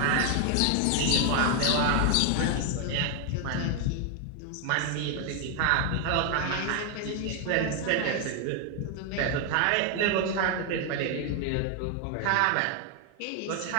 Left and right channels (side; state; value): both; different; correlation 0.01